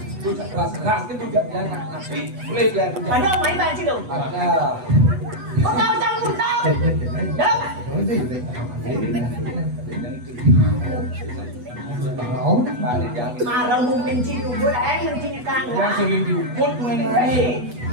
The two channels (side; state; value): left; late; 8.1 ms